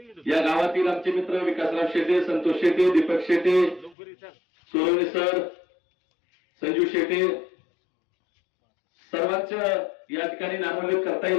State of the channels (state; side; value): drops out; right; at 4.0 s